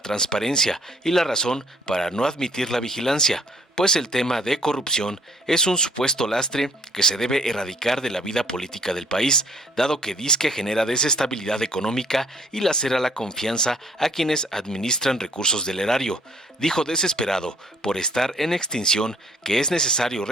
y la razón para no admitir la vigilancia, pues el tema de corrupción es un supuesto lastre que se debe erradicar de la vida política del país, dado que disque genera desestabilidad económica y lacera la confianza a quienes administran recursos del erario. Dijo desesperado por estar en extinción que es necesario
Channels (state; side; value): normal; both; correlation 0.60